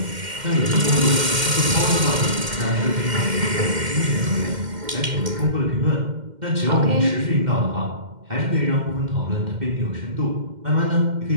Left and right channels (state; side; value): late; left; 2.1 ms